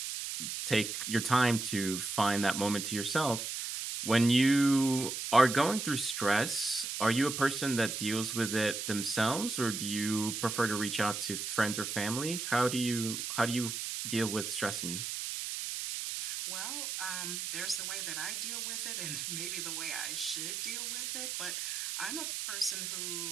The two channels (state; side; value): noise; right; hiss, 4 dB below the sound